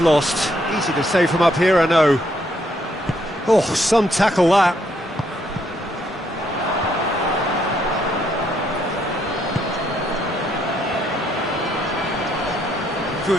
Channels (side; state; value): both; normal; correlation 0.72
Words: lost. Easy to say from up here, I know. Oh, some tackle that.